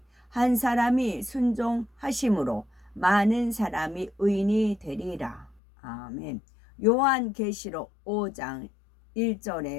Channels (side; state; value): right; drops out; at 5.6 s